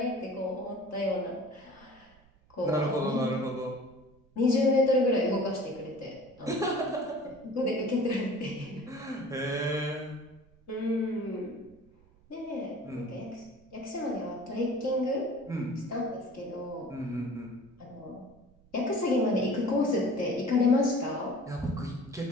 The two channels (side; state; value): right; noise; rumble, 28 dB below the sound